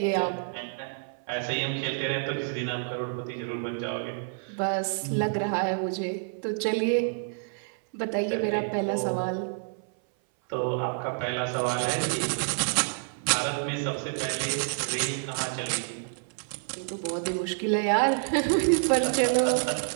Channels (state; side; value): silent; left; 59 dB below the other